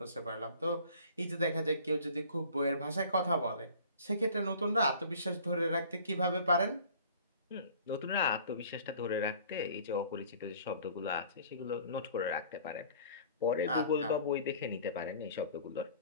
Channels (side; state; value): both; inverted; correlation -0.49